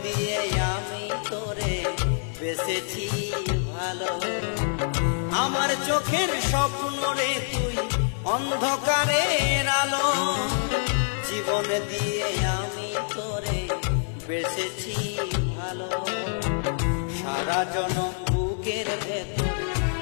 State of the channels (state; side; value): silent; right; 57 dB below the other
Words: দিয়ে আমি তোরে বেঁচেছি ভালো। আমার চোখের স্বপ্ন রে তুই অন্ধকারের আলো, জীবন দিয়ে আমি তোরে বেঁচেছি ভালো। সারা জনম বুকের ভেতর,